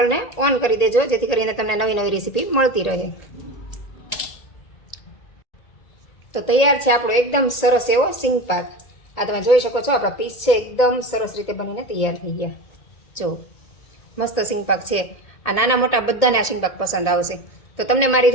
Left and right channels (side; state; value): right; late; 1.7 ms